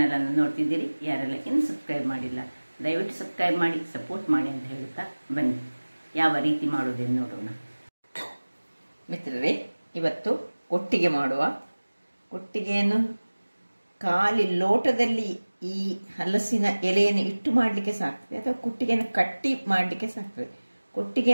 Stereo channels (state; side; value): inverted; both; correlation -1.00